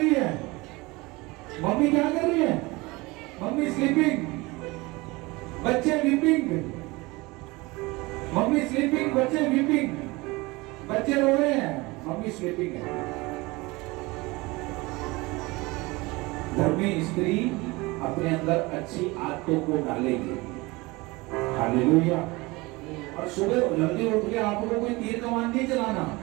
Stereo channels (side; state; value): left; quieter; 23.2 dB